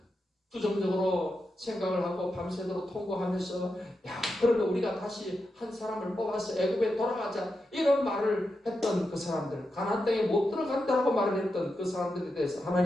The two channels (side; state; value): both; normal; correlation 0.88